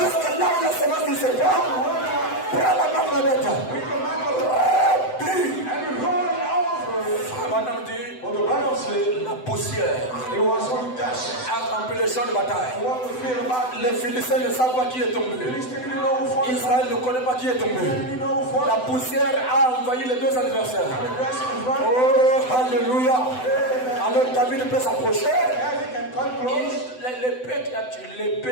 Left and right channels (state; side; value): late; right; 7.9 ms